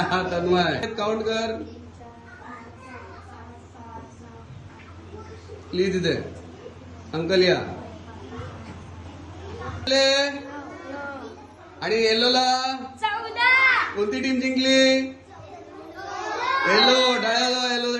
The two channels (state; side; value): identical; both; correlation 1.00